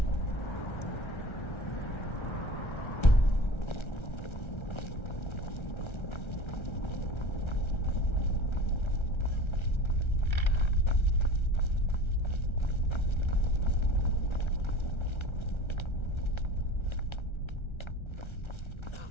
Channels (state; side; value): late; right; 1.3 ms